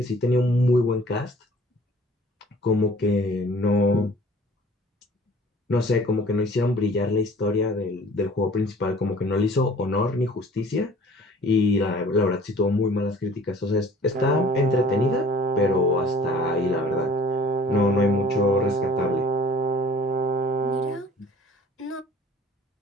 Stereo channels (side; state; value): both; normal; correlation 0.51